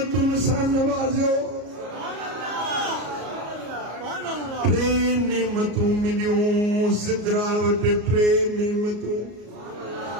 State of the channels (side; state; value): left; late; 33 ms